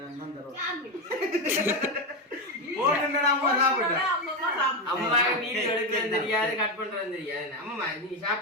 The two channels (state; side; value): normal; both; correlation 0.11